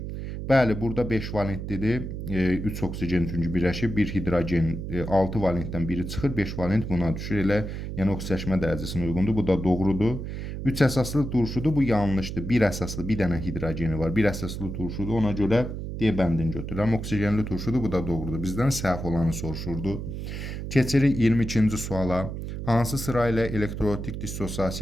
Bəli, burada 5 valentlidir. 3 oksigen çünki birləşib, 1 hidrogen 6 valentdən biri çıxır, 5 valent buna düşür. Elə, yəni oksidaşma dərəcəsinə uyğundur. Bu da doğrudur. 3 əsaslı turşudur, bu yanlışdır. 1 əsaslı bir dənə hidrogeni var. 1 əsaslı turşudur, ona görə D bəndini götürürəm. Oksigenli turşudur, bu da doğrudur. Bizdən səhv olanı soruşurdu. Keçirik 22-ci suala. Hansı sıra ilə elektrolitik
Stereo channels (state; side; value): noise; right; hum, 6 dB below the sound